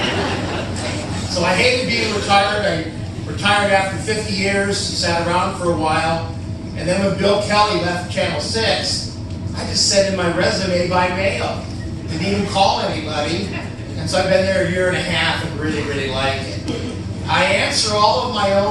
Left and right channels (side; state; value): both; identical; correlation 1.00